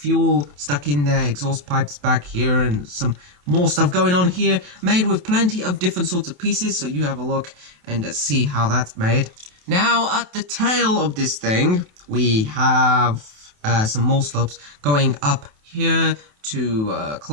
stuck in there, exhaust pipes back here, and some more stuff going on here, made with plenty of different sorts of pieces, so you have a look and see how that's made. Now, at the tail of this thing, we have some more slopes going up here to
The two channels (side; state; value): left; late; 28 ms